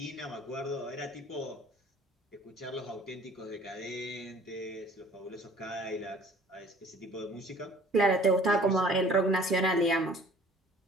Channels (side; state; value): both; normal; correlation 0.51